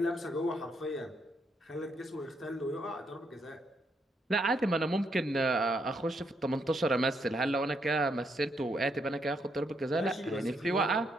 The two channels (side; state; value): both; normal; correlation 0.76